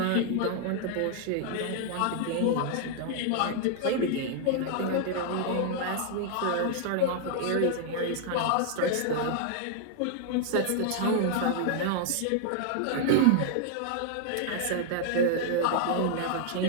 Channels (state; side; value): different; both; correlation -0.01